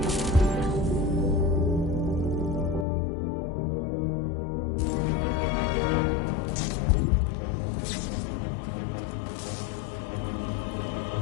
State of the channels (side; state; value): right; drops out; at 2.9 s